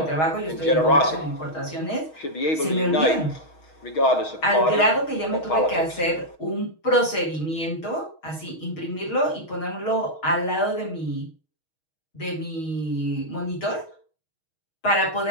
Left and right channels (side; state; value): right; late; 6.3 ms